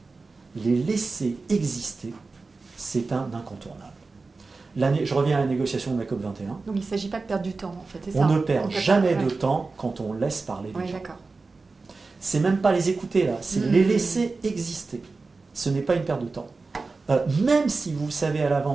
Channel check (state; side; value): quieter; left; 3.9 dB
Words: les laisser exister, c'est un incontournable. Je reviens à la négociation de la COP21. Donc il ne s'agit pas de perdre du temps, en fait, c'est ça? On ne perd jamais de temps quand on laisse parler les gens. D'accord. C'est même pas les écouter là, c'est les laisser exister. Ce n'est pas une perte de temps. Même si vous savez à